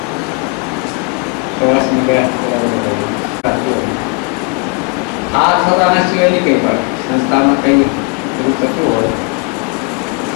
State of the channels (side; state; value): right; quieter; 31.7 dB